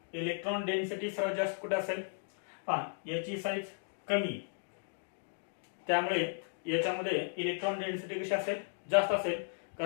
इलेक्ट्रॉन डेन्सिटी सर्वात जास्त कुठे असेल, पहा याची साईज कमी, त्यामुळे याच्यामध्ये इलेक्ट्रॉन डेन्सिटी कशी असेल, जास्त असेल,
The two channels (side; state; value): right; silent; digital silence